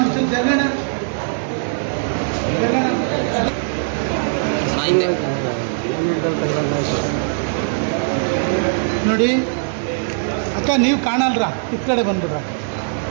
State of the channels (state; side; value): silent; left; 66 dB below the other